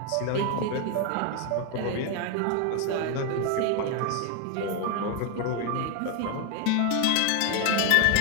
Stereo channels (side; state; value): both; different; correlation 0.01